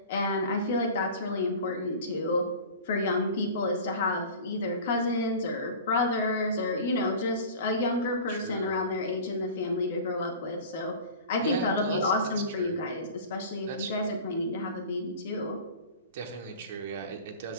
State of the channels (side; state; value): both; inverted; correlation -0.37